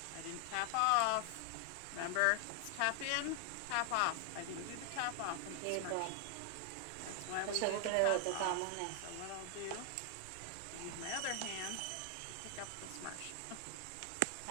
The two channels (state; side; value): different; both; correlation 0.00